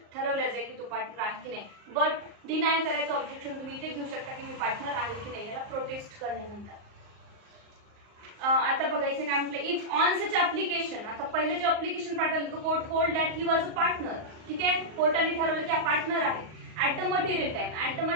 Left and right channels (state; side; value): late; left; 38 ms